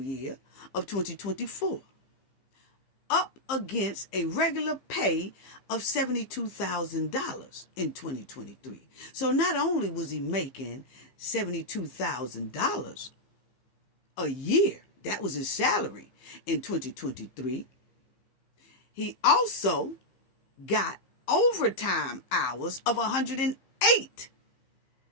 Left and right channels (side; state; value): right; late; 15 ms